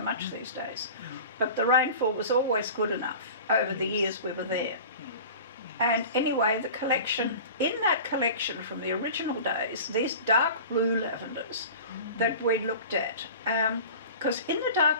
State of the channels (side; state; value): both; inverted; correlation -0.37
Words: these days. But the rainfall was always good enough over the years we were there. And anyway, in that collection from the original days, these dark blue lavenders that we looked at, because in the